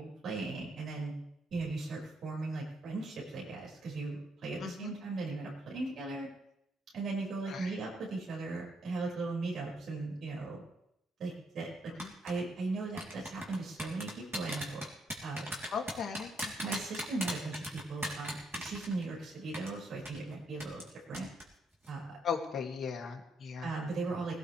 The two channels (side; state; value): both; normal; correlation 0.74